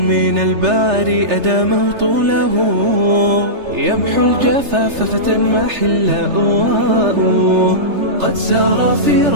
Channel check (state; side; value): late; left; 3.3 ms